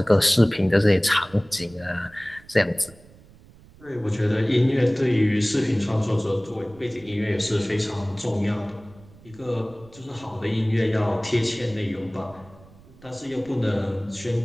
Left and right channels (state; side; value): noise; right; rumble, 24 dB below the sound